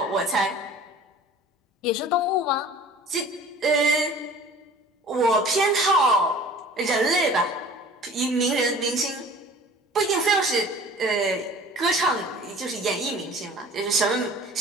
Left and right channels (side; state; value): both; normal; correlation 0.46